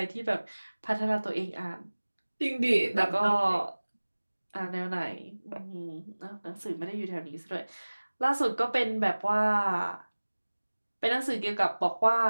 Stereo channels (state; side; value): inverted; both; correlation -1.00